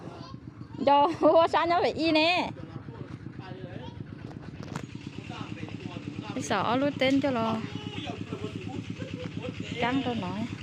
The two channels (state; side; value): identical; both; correlation 1.00